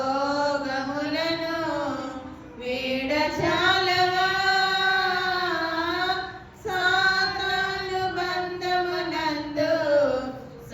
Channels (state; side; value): identical; both; correlation 1.00